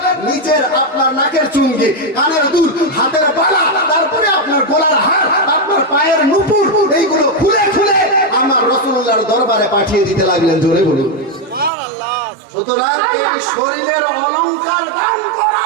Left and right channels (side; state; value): left; drops out; at 11.7 s